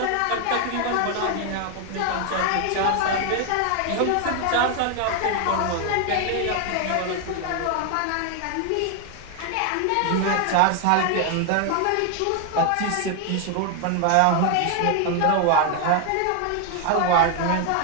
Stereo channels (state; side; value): different; both; correlation 0.01